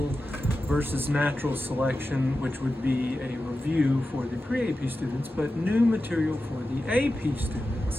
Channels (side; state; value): both; normal; correlation 0.92